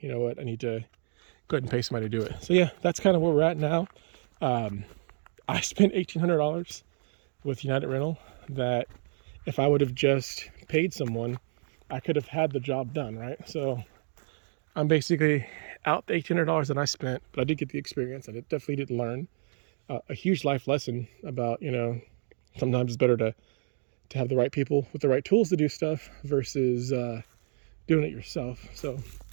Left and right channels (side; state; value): left; silent; 58 dB below the other